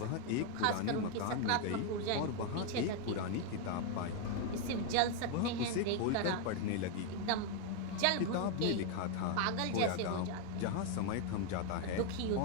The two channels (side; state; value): both; different; correlation 0.01